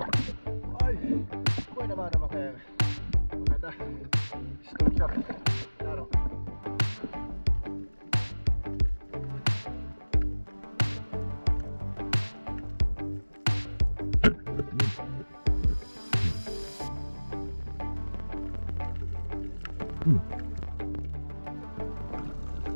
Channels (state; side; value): inverted; both; correlation -1.00